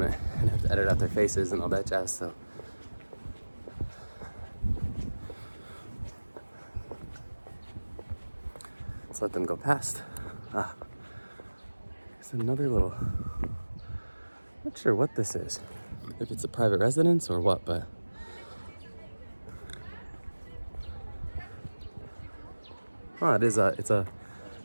and have to edit out their faces and all that jazz. So let's let them go past. It's another little, not sure what this is, if it's a private residence or what, but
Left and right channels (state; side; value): inverted; both; correlation -1.00